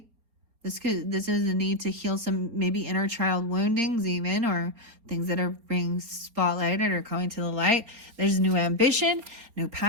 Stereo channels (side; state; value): left; late; 4.3 ms